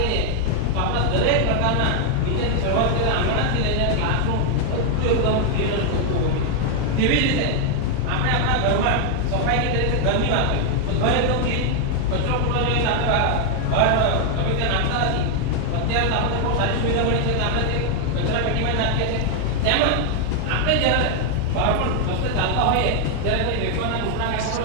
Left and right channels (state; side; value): different; both; correlation 0.00